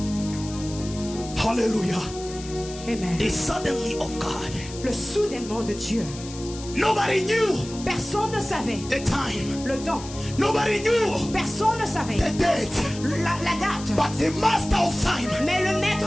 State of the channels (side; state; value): left; noise; hiss, 14 dB below the sound